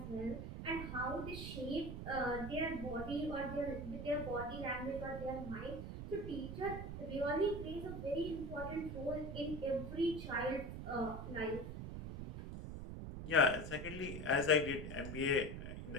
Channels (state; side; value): noise; right; rumble, 7 dB below the sound